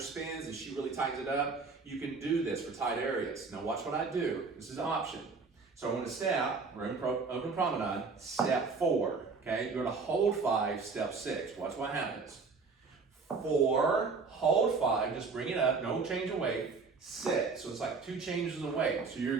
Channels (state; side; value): quieter; left; 4.6 dB